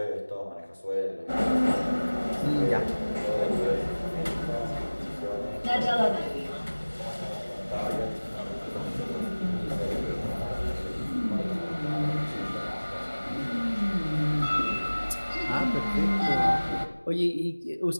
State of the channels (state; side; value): inverted; both; correlation -1.00